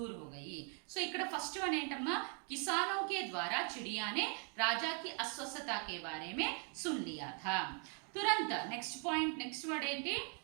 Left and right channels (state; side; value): quieter; left; 39.3 dB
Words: हो गई. सो ఇక్కడ ఫస్ట్ వన్ ఏంటమ్మా, किसानों के द्वारा चिड़िया ने राजा की अस्वस्थता के बारे में सुन लिया था. तुरंत नेक्स्ट पॉइंट, नेक्स्ट वर्ड ఏంటి,